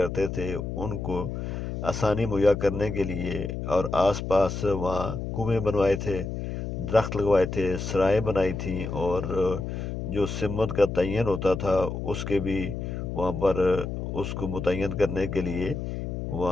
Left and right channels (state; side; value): noise; left; hum, 5 dB below the sound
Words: تھے ان کو آسانی مہیا کرنے کے لیے، اور آس پاس وہاں کنویں بنوائے تھے، درخت لگوائے تھے، سرائیں بنائی تھیں، اور جو سمت کا تعین ہوتا تھا اس کے بھی وہاں پر اس کو متعین کرنے کے لیے